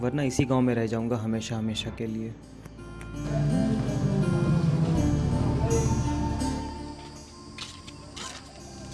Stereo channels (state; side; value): identical; both; correlation 1.00